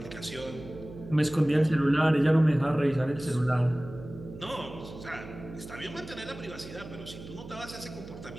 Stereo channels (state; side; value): noise; right; hum, 14 dB below the sound